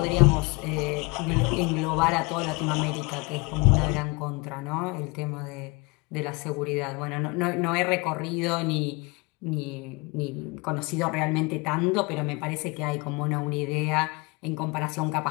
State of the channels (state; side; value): quieter; right; 27.8 dB